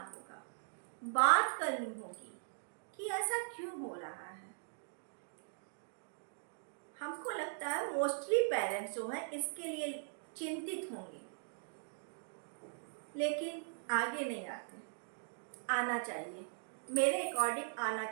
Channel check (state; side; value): silent; left; digital silence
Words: बात करनी होगी कि ऐसा क्यों हो रहा है। हमको लगता है मोस्टली पेरेंट्स जो हैं इसके लिए चिंतित होंगे, लेकिन आगे नहीं आते। आना चाहिए, मेरे अकॉर्डिंग आना